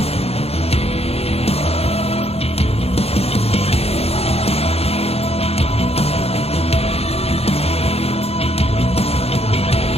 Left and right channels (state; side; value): late; right; 0.29 ms